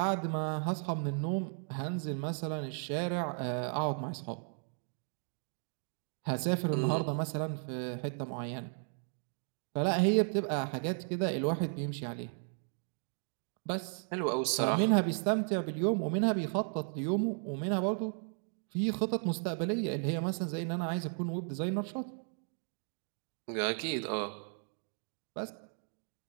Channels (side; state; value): left; silent; 54 dB below the other